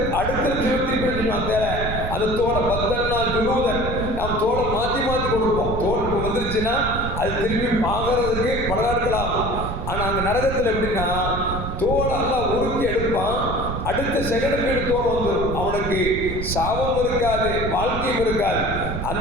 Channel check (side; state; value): right; noise; rumble, 5 dB below the sound